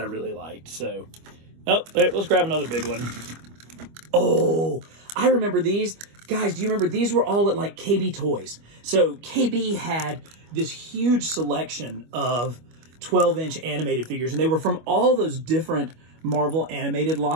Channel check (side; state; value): left; late; 25 ms